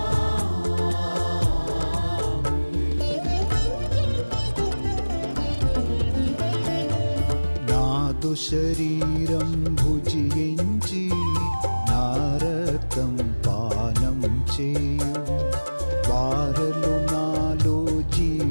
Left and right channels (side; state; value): both; inverted; correlation -1.00